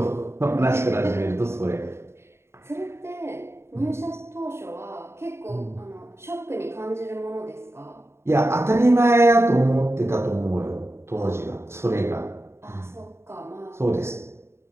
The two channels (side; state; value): left; late; 0.13 ms